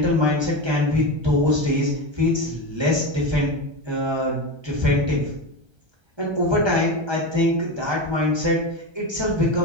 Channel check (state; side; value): late; left; 1.3 ms